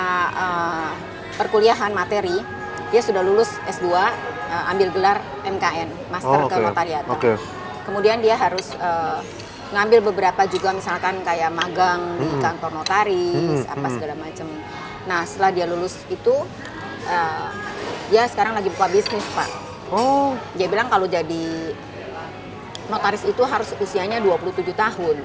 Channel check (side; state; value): both; identical; correlation 1.00